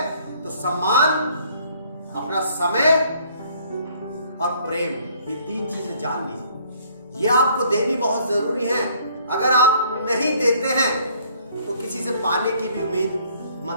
तो सम्मान, अपना समय और प्रेम, ये 3 चीजें जान लीजिए। ये आपको देनी बहुत जरूरी है। अगर आप नहीं देते हैं तो किसी से पाने की भी उम्मीद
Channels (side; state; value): both; inverted; correlation -0.62